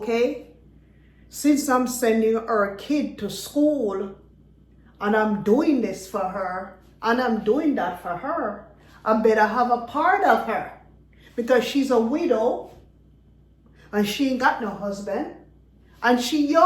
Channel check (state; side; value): identical; both; correlation 1.00